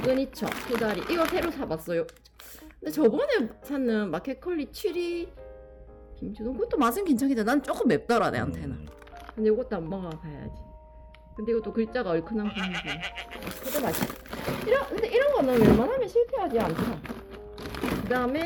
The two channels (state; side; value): identical; both; correlation 1.00